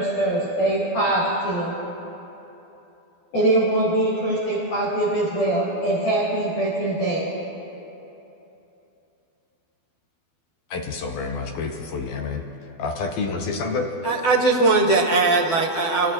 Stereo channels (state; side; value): late; right; 12 ms